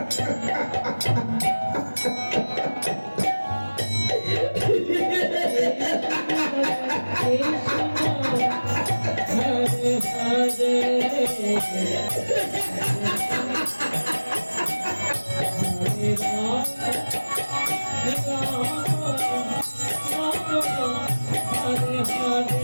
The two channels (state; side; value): inverted; both; correlation -1.00